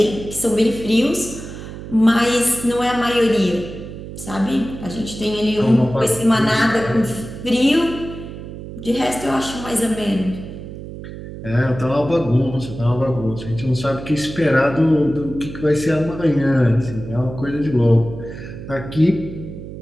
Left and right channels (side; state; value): right; noise; hum, 11 dB below the sound